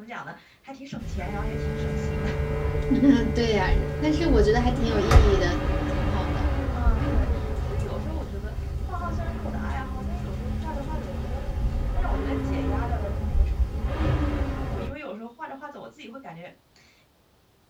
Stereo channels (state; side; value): identical; both; correlation 1.00